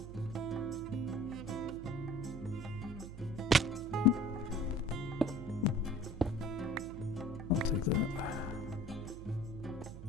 I'll take that.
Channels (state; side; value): noise; right; hum, 12 dB below the sound